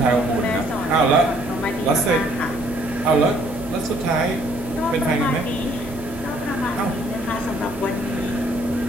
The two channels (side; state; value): both; normal; correlation 0.63